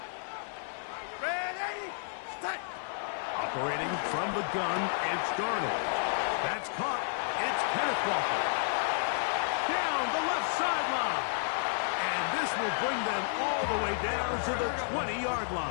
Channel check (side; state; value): right; silent; 57 dB below the other